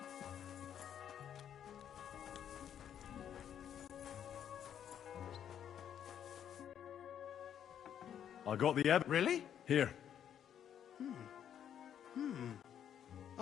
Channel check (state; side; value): quieter; right; 9.4 dB